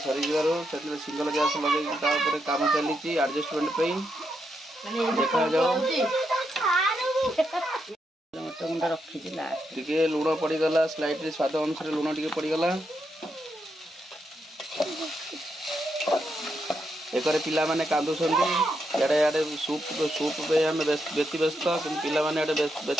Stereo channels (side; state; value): both; normal; correlation 0.82